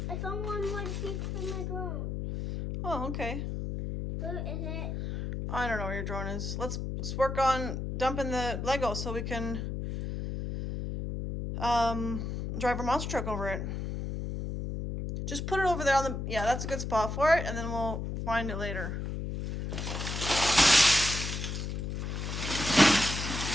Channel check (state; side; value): noise; left; hum, 4 dB below the sound